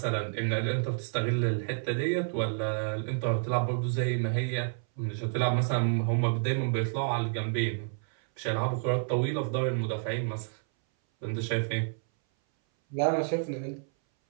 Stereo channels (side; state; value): left; silent; 58 dB below the other